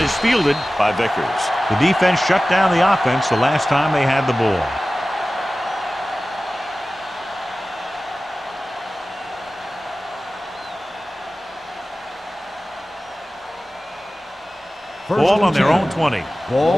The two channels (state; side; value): normal; both; correlation 0.96